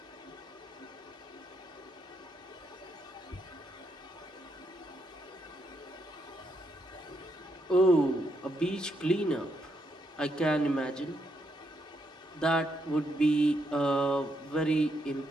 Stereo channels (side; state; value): both; normal; correlation 0.78